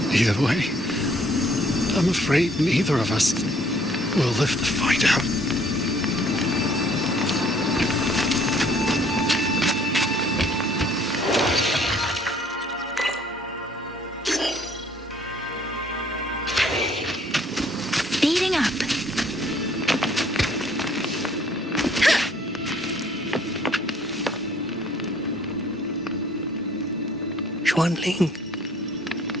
Either way, I'm afraid neither of us will live to find out. Speeding up. Xuanling.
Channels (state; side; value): normal; both; correlation 0.60